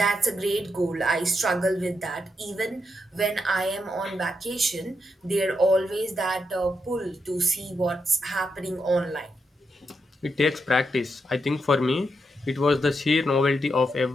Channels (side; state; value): both; normal; correlation 0.83